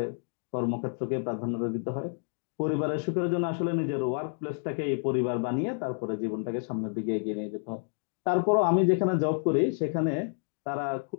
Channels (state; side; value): silent; right; digital silence